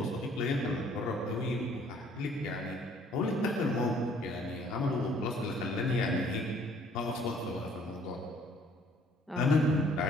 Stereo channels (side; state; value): both; normal; correlation 0.59